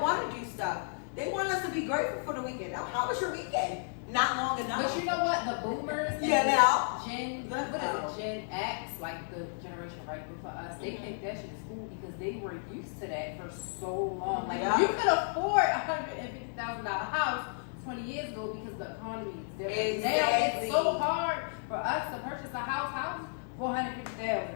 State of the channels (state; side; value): silent; right; digital silence